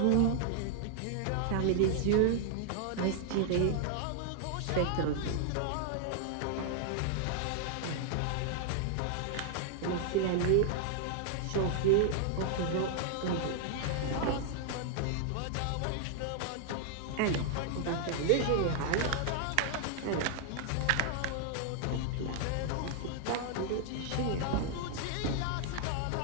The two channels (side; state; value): both; different; correlation 0.00